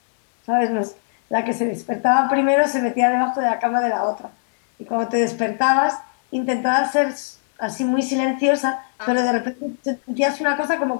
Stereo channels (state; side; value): silent; right; digital silence